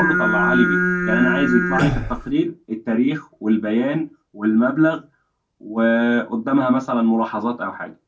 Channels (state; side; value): identical; both; correlation 1.00